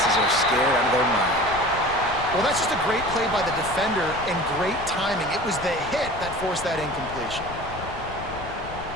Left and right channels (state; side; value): noise; left; rumble, 12 dB below the sound